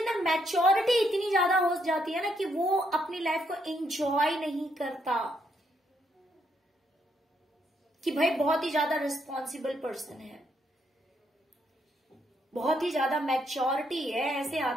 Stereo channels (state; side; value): normal; both; correlation 0.75